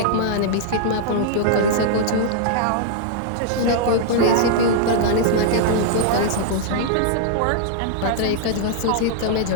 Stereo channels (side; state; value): both; different; correlation -0.01